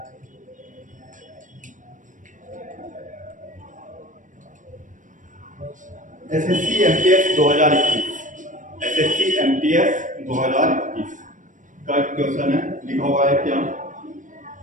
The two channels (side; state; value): left; late; 0.37 ms